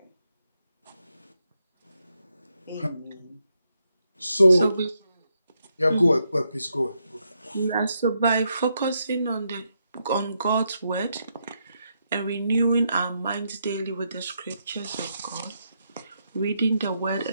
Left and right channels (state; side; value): inverted; both; correlation -0.80